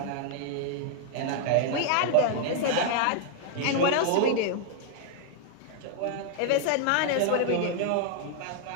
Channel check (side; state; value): both; different; correlation -0.01